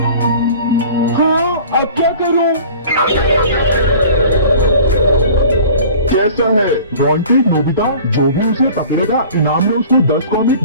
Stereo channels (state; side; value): inverted; both; correlation -0.44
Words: हाँ, अब क्या करूं? कैसा है? वांटेड नोबिता, जो भी उसे पकड़ेगा इनाम में उसको 10 कॉमिक